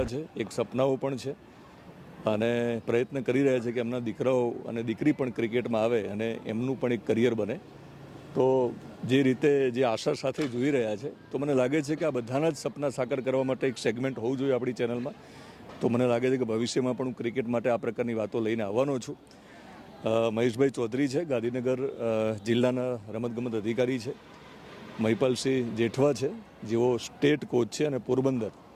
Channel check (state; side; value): identical; both; correlation 1.00